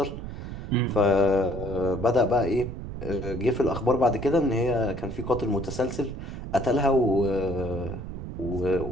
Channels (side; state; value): right; noise; rumble, 8 dB below the sound